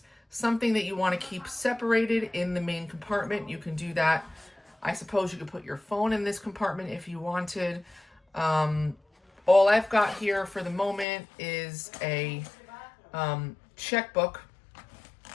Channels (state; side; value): drops out; right; at 11.1 s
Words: something that you want to keep separated in the main compartment, you can do that. I suppose you could put your phone in this compartment if you wanted. All I've got here for the moment is a checkbook